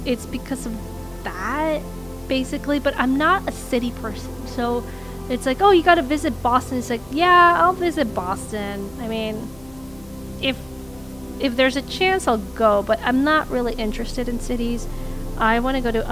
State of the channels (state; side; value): noise; left; hum, 24 dB below the sound